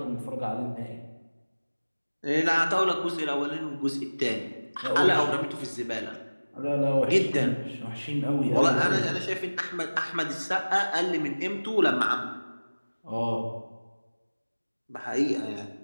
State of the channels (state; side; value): inverted; both; correlation -1.00